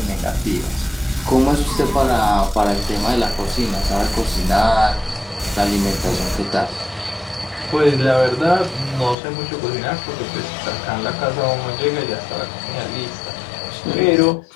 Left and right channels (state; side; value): drops out; right; at 9.2 s